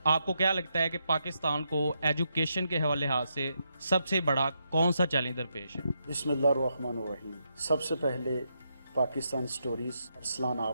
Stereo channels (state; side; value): inverted; both; correlation -0.81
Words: आपको क्या लगता है कि पाकिस्तान को एजुकेशन के हवाले से सबसे बड़ा कौन सा चैलेंज दरपेश है? बिस्मिल्लाहिर्रहमानिर्रहीम। सबसे पहले पाकिस्तान स्टोरीज अरसलान